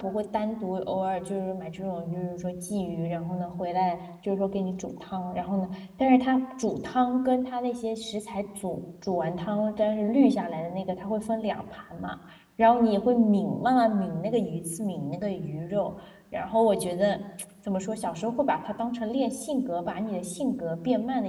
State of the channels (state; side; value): identical; both; correlation 1.00